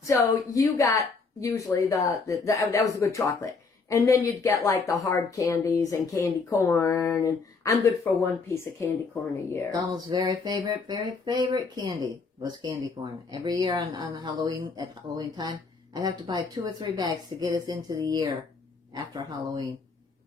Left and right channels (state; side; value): quieter; right; 4.5 dB